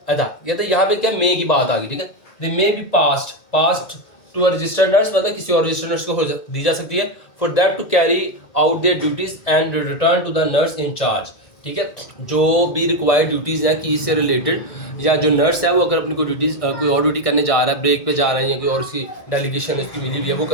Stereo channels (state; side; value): late; right; 2.1 ms